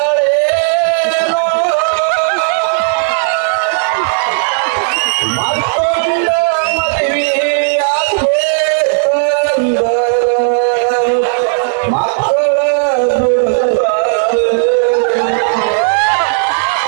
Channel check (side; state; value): left; silent; digital silence